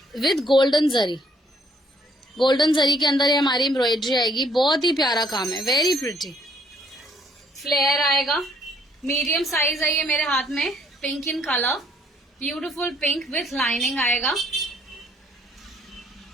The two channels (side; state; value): both; normal; correlation 0.65